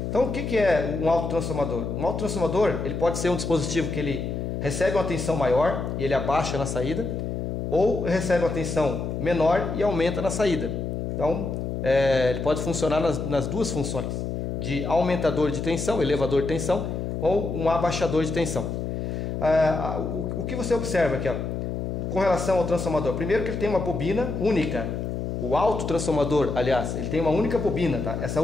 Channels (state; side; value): noise; left; hum, 3 dB below the sound